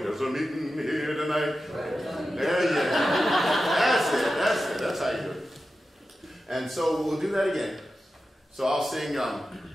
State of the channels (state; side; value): normal; both; correlation 0.92